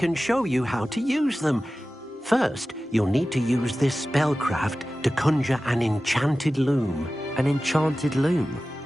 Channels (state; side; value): normal; both; correlation 0.95